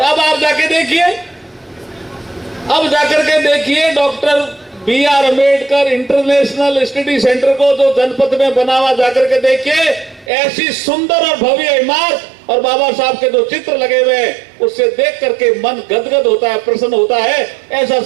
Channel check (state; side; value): drops out; left; at 10.3 s